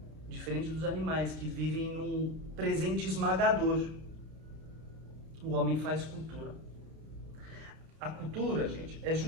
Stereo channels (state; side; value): late; left; 31 ms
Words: Diferente dos animais que vivem num presente esmagador. O homem faz cultura. A cultura, gente, é